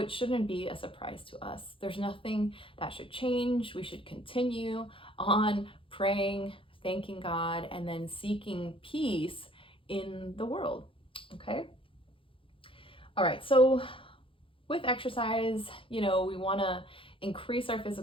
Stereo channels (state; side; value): late; right; 0.25 ms